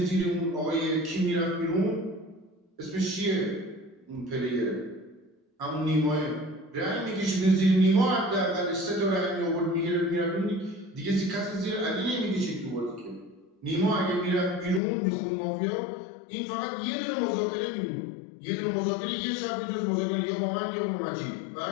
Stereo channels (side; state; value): right; drops out; at 14.8 s